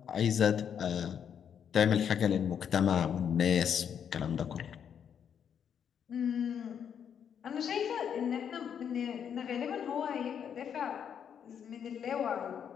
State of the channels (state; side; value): quieter; right; 8.1 dB